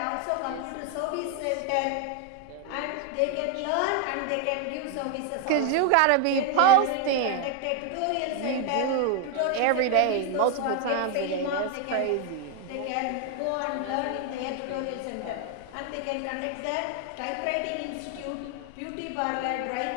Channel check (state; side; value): different; both; correlation 0.01